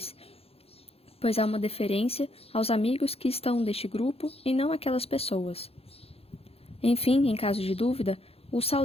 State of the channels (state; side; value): late; right; 0.29 ms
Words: pois há uma deferência aos amigos que estão deste grupo e não aquelas pessoas. Enfim, em caso de dúvida, o